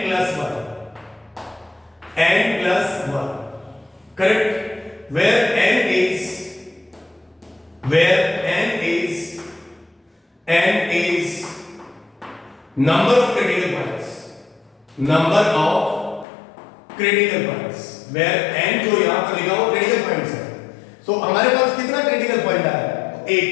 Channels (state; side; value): drops out; right; at 16.2 s